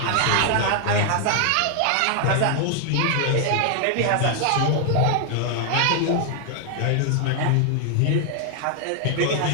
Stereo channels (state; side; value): different; both; correlation 0.00